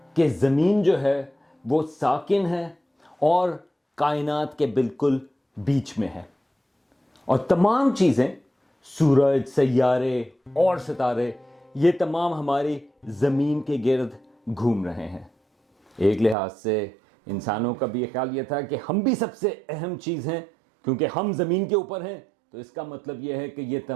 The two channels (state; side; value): drops out; left; at 16.4 s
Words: کہ زمین جو ہے وہ ساکن ہے اور کائنات کے بالکل بیچ میں ہے، اور تمام چیزیں، سورج، سیارے اور ستارے، یہ تمام ہماری زمین کے گرد گھوم رہے ہیں. ایک لحاظ سے انسانوں کا بھی یہ خیال یہ تھا کہ ہم بھی سب سے اہم چیز ہیں، کیونکہ ہم زمین کے اوپر ہیں، تو اس کا مطلب یہ ہے کہ یہ